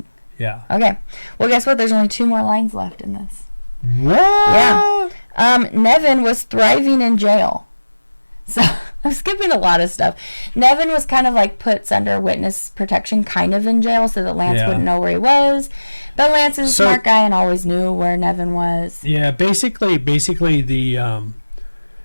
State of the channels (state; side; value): inverted; both; correlation -1.00